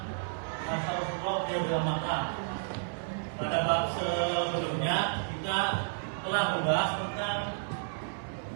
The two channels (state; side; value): silent; left; 57 dB below the other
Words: masa Rasulullah yang sudah Makkah. Pada bab sebelumnya kita telah membahas tentang